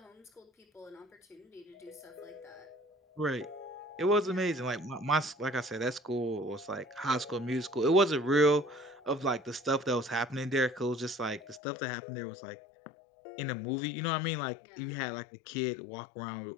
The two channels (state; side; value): drops out; right; at 11.6 s